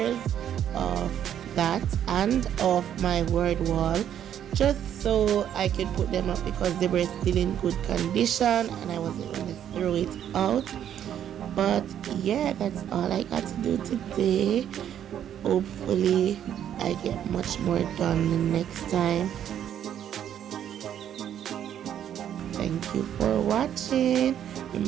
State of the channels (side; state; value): left; quieter; 10.0 dB